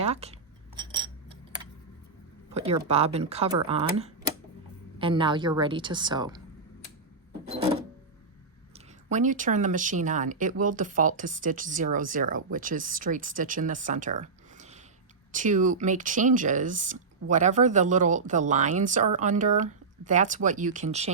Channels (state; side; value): quieter; left; 4.5 dB